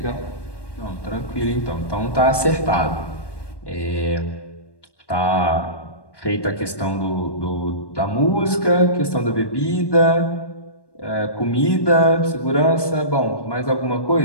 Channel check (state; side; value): late; right; 1.2 ms